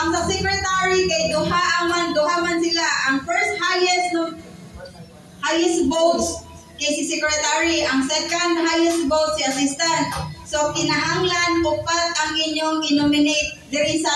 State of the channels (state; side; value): identical; both; correlation 1.00